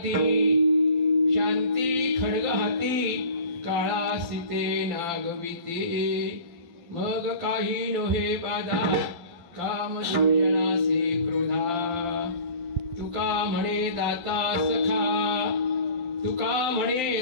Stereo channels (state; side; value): late; left; 12 ms